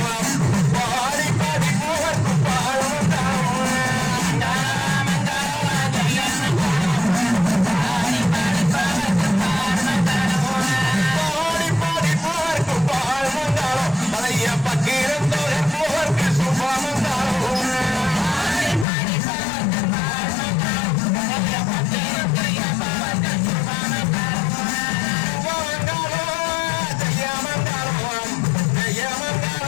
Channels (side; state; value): right; drops out; at 18.9 s